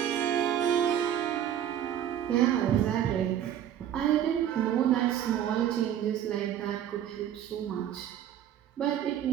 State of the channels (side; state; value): left; quieter; 10.4 dB